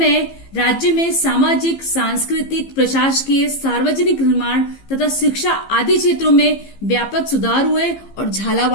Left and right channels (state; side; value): late; right; 15 ms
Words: राज्य में सामाजिक, सांस्कृतिक, प्रशासकीय, सार्वजनिक निर्माण तथा शिक्षा आदि क्षेत्रों में व्यापक सुधार हुए और